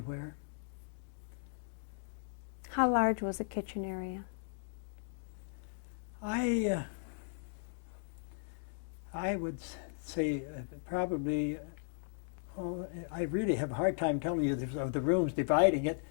How large was the kitchen area? I would say probably, I really have a hard time telling you of the rooms dividing it,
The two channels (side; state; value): right; silent; digital silence